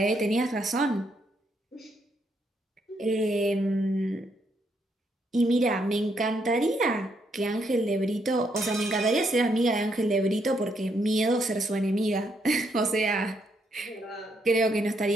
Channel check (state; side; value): normal; both; correlation 0.75